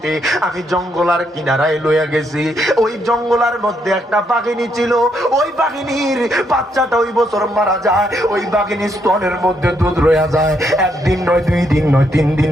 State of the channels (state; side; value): normal; both; correlation 0.75